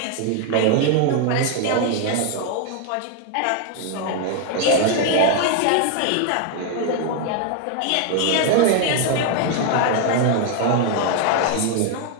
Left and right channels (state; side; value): different; both; correlation 0.00